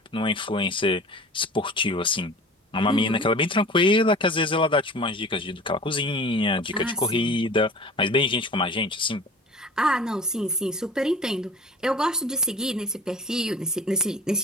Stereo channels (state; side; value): normal; both; correlation 0.41